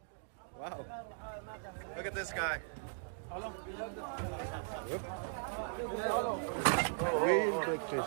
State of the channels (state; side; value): silent; left; digital silence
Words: Wow. Look at this guy. Whoop. Real big fish.